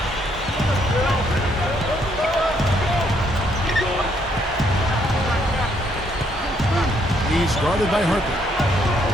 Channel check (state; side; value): normal; both; correlation 0.71